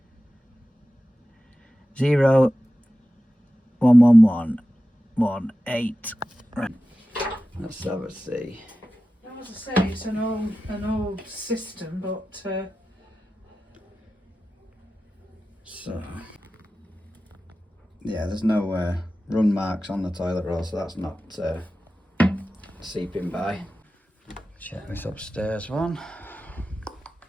0 1 1 1 1 8. Right. Let's have a see. As I say, it's an old system, but So, yeah, there's no run marks on the toilet roll, so that's not seeping by. Check this upstairs one.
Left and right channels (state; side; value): normal; both; correlation 0.94